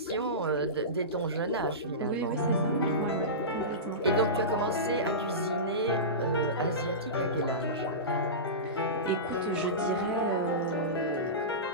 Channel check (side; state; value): both; normal; correlation -0.20